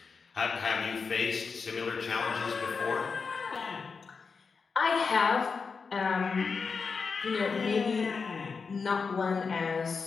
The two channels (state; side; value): quieter; right; 5.1 dB